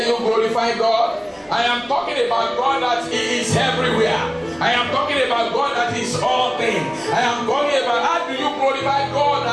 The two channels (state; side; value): identical; both; correlation 1.00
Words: you glorify God. I am talking about God that He is everywhere. I am talking about God that is all things. I am talking about how do you glorify God